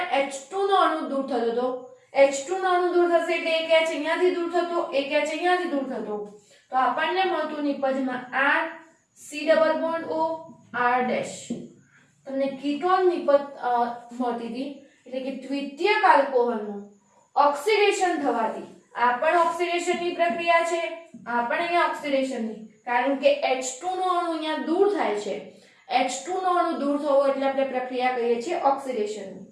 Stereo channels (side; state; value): both; identical; correlation 1.00